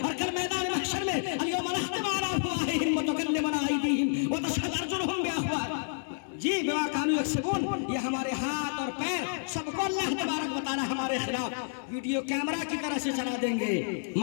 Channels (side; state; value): right; silent; digital silence